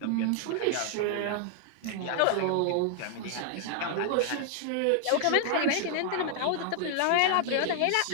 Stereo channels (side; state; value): both; different; correlation 0.00